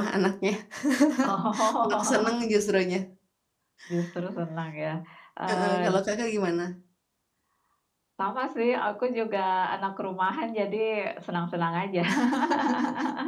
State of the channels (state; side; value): identical; both; correlation 1.00